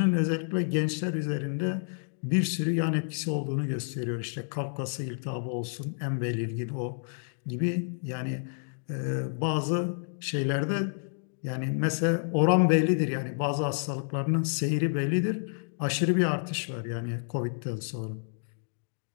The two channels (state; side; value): silent; right; digital silence